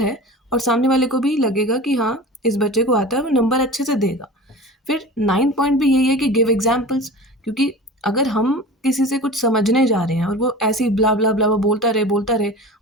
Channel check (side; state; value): both; normal; correlation 0.35